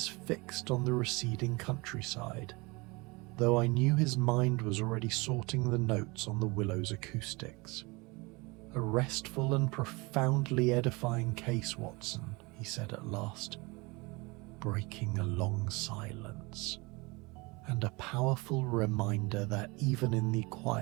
fixed on the receding countryside, though I knew his mind was already sorting the notes on the Willow's acoustics. "A restful and profoundly edifying case, Watson," he said at last, breaking a long silence, "and a powerful reminder that even in the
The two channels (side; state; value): left; quieter; 25.9 dB